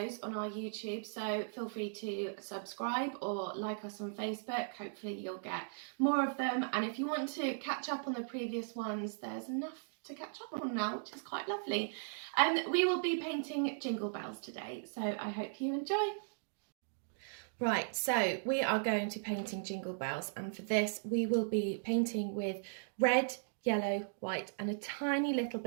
on our YouTube, so feel free to subscribe or like us on Facebook. Hopefully you'll get more of them, and if you want to catch up on the previous ones, there's enough to catch up on now, which is quite lovely. We will be painting jingle bells today, so I hope you enjoy. Right, so we are going to painting jingle bells, and for this we will be painting with red, yellow, white and a tiny little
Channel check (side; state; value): left; silent; digital silence